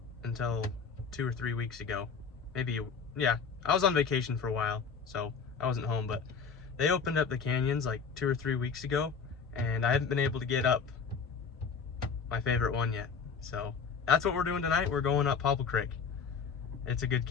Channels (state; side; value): quieter; right; 5.7 dB